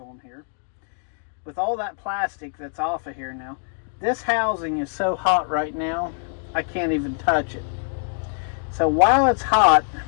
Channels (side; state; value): right; silent; digital silence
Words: here. With all that plastic that's off of here now, this housing is so hot right now, I can't even touch it. So while it's hot,